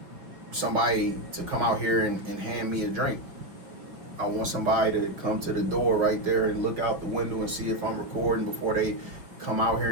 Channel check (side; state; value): left; late; 5.3 ms